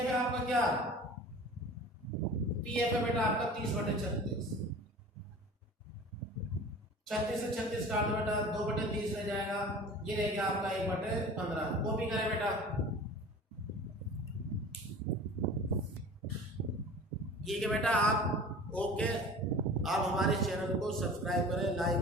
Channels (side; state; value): both; normal; correlation 0.40